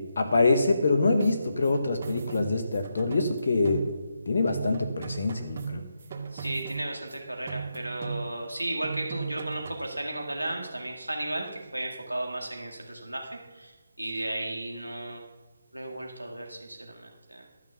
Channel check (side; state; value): both; inverted; correlation -0.84